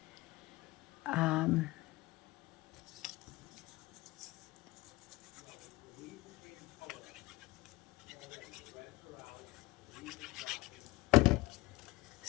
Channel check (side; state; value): right; quieter; 20.1 dB